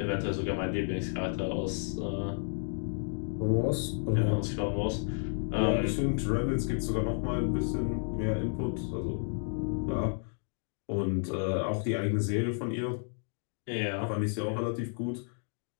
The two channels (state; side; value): silent; right; 57 dB below the other